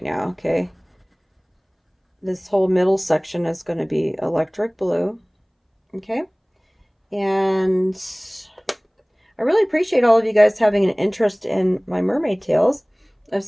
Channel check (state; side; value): identical; both; correlation 1.00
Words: now, okay? This whole middle section is going to be electric blue, okay? And I really appreciate all of you guys having an interest in my mermaid tails. I've